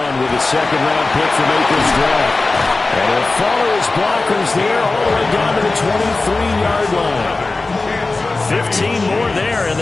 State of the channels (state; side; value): quieter; right; 3.4 dB